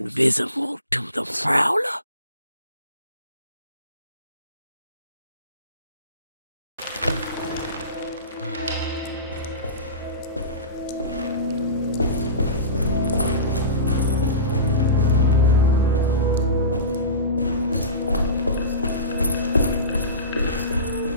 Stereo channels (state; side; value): inverted; both; correlation -0.31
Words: to the prowler.